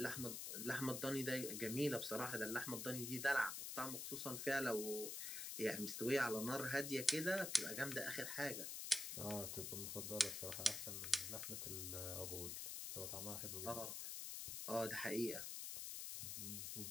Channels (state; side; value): noise; left; hiss, 4 dB below the sound